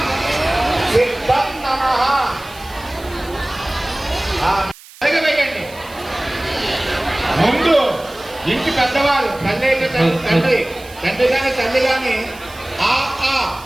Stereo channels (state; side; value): noise; right; hiss, 21 dB below the sound